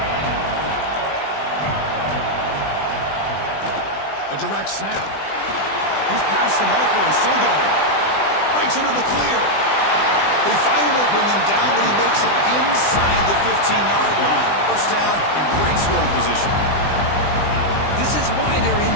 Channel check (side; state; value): right; late; 20 ms